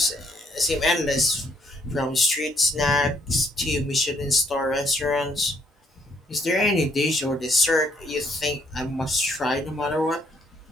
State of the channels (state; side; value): normal; both; correlation 0.68